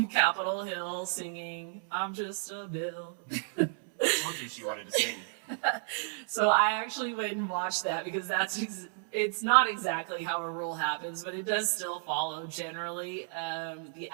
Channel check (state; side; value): silent; left; 56 dB below the other